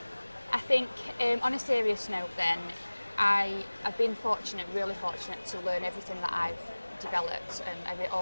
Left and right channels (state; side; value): inverted; both; correlation -1.00